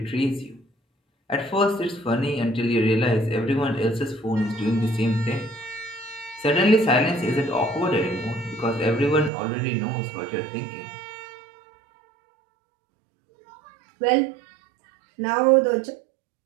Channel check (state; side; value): drops out; left; at 9.3 s